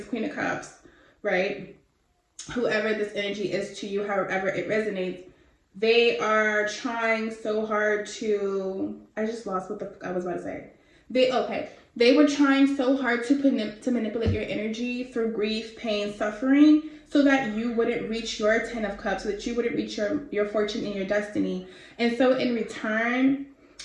Queen of Cups, right? Whoever this energy is to you, however it resonates, they are trying so hard to, I just lost what I was about to say. They were trying so hard to manipulate your energy through grief, pain, suffering, so that you wouldn't reach your 10 of Cups, so that you wouldn't reach your fortune and your destiny. And so in return,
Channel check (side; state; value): both; identical; correlation 1.00